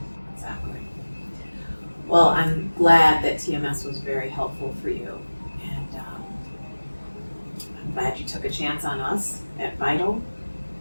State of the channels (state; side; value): inverted; both; correlation -1.00